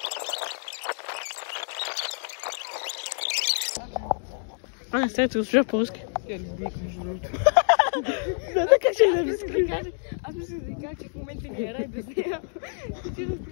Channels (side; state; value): right; silent; digital silence